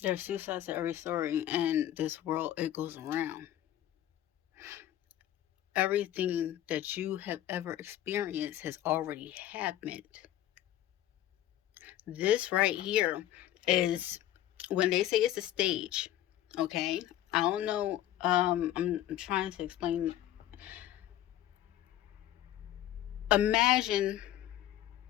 There's two sides to every story, and this world, it goes around. Everything that you have ever experienced has already happened. This right here is when they say it's a stage, okay? I don't know. I'm trying to explain. Imagine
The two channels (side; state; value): right; quieter; 13.0 dB